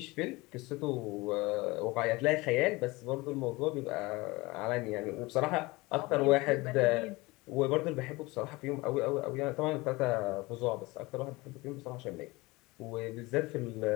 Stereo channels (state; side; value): quieter; right; 22.6 dB